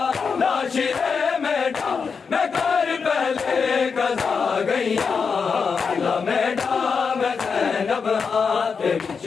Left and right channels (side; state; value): right; quieter; 5.6 dB